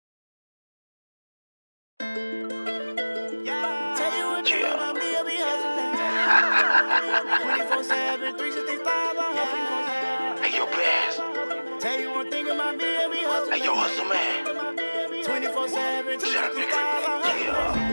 Tell you one thing about me, I be hustling. 24/7, 365, I hustle. Hey, yo, Bass. Tell you one thing about me, I be hustling. Hey, yo, Hustle Man. 24/7, 365, I hustle.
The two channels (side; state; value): both; inverted; correlation -1.00